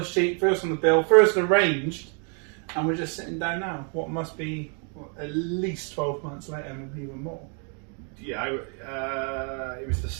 sheet, first on the bill, first arranged, and we're just sitting down now. What must be at least 12 months later, maybe even more. Yeah, it was the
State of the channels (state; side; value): quieter; left; 39.4 dB